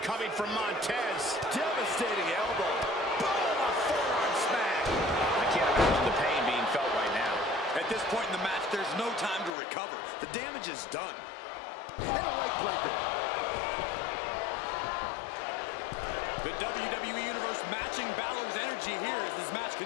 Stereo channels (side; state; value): right; drops out; at 9.5 s